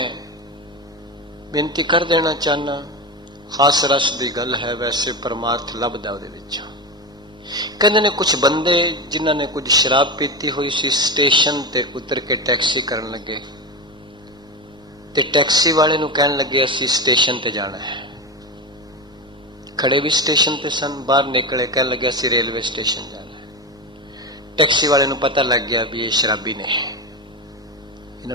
ਬੇਨਤੀ ਕਰ ਦੇਣਾ ਚਾਹਨਾ, ਹਾਸ ਰਸ ਦੀ ਗੱਲ ਹੈ, ਵੈਸੇ ਪਰਮਾਰਥ ਲੱਭਦਾ ਉਹਦੇ ਵਿੱਚ। ਕਹਿੰਦੇ ਨੇ ਕੁਝ ਬੰਦੇ ਜਿਨ੍ਹਾਂ ਨੇ ਕੁਝ ਸ਼ਰਾਬ ਪੀਤੀ ਹੋਈ ਸੀ, ਸਟੇਸ਼ਨ ਤੇ ਉਤਰ ਕੇ ਟੈਕਸੀ ਕਰਨ ਲੱਗੇ ਤੇ ਟੈਕਸੀ ਵਾਲੇ ਨੂੰ ਕਹਿਣ ਲੱਗੇ ਅਸੀਂ ਸਟੇਸ਼ਨ ਤੇ ਜਾਣਾ ਹੈ। ਖੜੇ ਵੀ ਸਟੇਸ਼ਨ ਤੇ ਸਨ, ਬਾਹਰ ਨਿਕਲੇ, ਕਹਿਣ ਲੱਗੇ ਅਸੀਂ ਰੇਲਵੇ ਸਟੇਸ਼ਨ ਜਾਣਾ ਹੈ। ਟੈਕਸੀ ਵਾਲੇ ਨੂੰ ਪਤਾ ਲੱਗ ਗਿਆ ਵੀ ਇਹ ਸ਼ਰਾਬੀ ਨੇ, ਇਹਨਾਂ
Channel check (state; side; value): normal; both; correlation 0.19